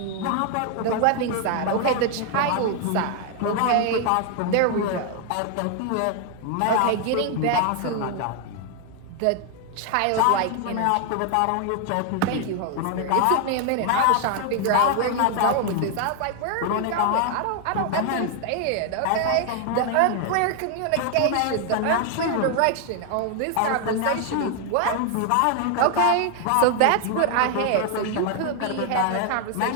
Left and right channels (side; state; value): both; different; correlation 0.00